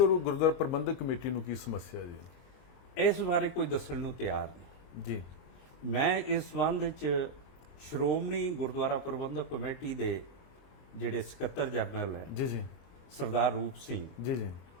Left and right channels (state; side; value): late; right; 23 ms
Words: ਪ੍ਰਬੰਧਕ ਕਮੇਟੀ ਨੂੰ ਕੀ ਸਮੱਸਿਆ ਜੀ? ਇਸ ਬਾਰੇ ਕੋਈ ਦੱਸਣ ਨੂੰ ਤਿਆਰ ਨਹੀਂ ਜੀ। ਮੈਂ ਇਸ ਸੰਬੰਧ ਵਿੱਚ ਸ਼੍ਰੋਮਣੀ ਗੁਰਦੁਆਰਾ ਪ੍ਰਬੰਧਕ ਕਮੇਟੀ ਦੇ ਜਿਹੜੇ ਸਕੱਤਰ ਜਨਰਲ ਹੈ ਜੀ ਜੀ ਸਰਦਾਰ ਰੂਪ ਸਿੰਘ ਜੀ ਜੀ